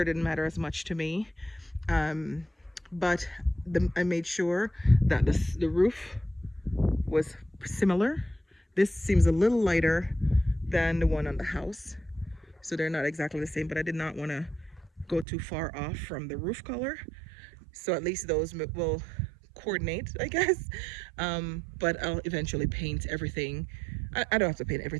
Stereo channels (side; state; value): left; drops out; at 15.2 s